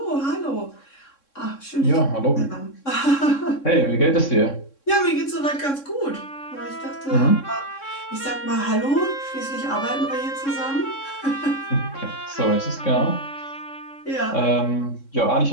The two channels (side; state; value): right; late; 3.6 ms